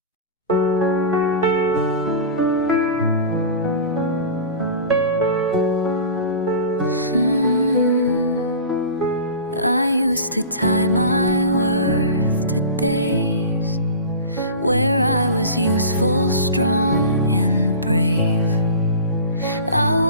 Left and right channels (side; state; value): both; inverted; correlation -0.34